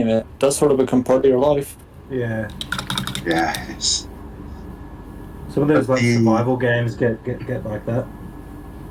it does sort of become part of your life. Yeah, Yeah, it's... some of those like The- survival games get like that.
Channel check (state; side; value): identical; both; correlation 1.00